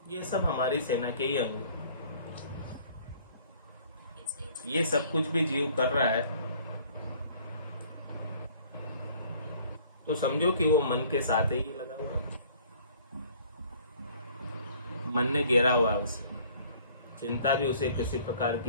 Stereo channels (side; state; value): both; inverted; correlation -0.55